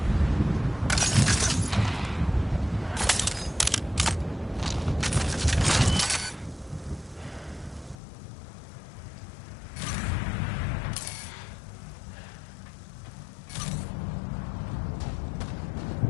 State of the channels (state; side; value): drops out; right; at 8.0 s